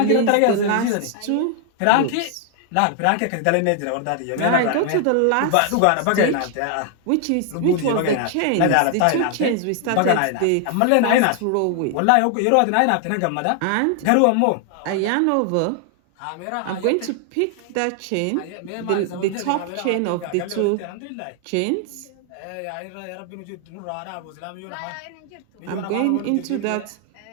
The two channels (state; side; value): different; both; correlation 0.00